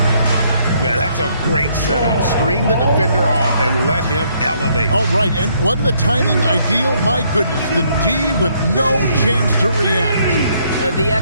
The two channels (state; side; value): inverted; both; correlation -0.69